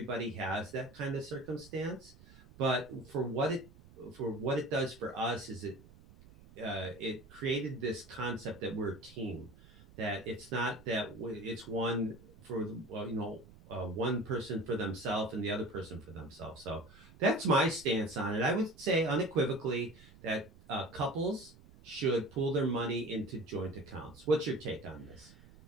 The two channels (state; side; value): noise; right; rumble, 22 dB below the sound